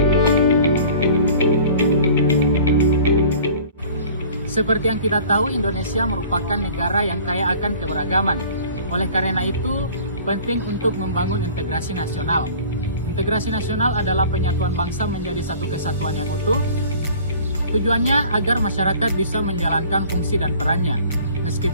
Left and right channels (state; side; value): inverted; both; correlation -0.47